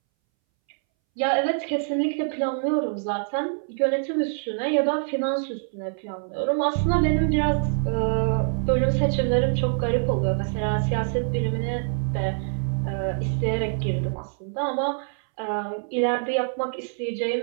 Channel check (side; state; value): left; silent; 62 dB below the other